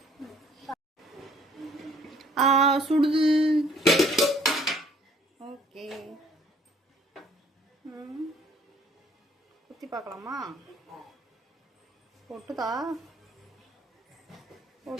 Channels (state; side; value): normal; both; correlation 0.59